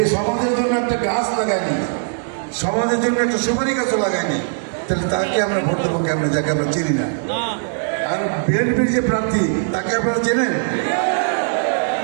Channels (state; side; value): silent; left; digital silence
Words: সমাজের জন্য একটা গাছ লাগায়নি, সমাজের জন্য একটা সুপারি গাছও লাগায়নি, তাহলে তাকে আমরা ভোট দেবো কেমন, যাকে আমরা চিনি না। আর বিএনপির যে প্রার্থী তাকে আপনারা চেনেন,